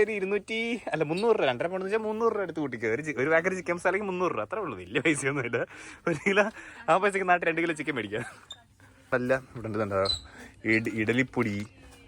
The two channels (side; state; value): both; identical; correlation 1.00